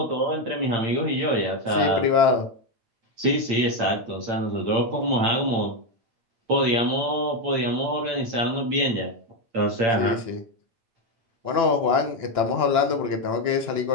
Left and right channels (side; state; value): left; late; 8.8 ms